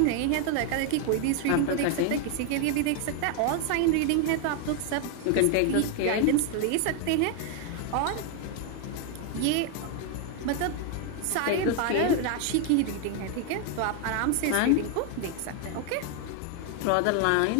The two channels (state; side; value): different; both; correlation 0.01